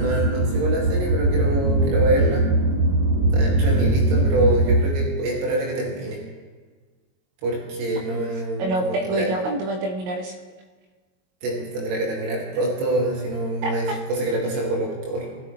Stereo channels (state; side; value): late; left; 22 ms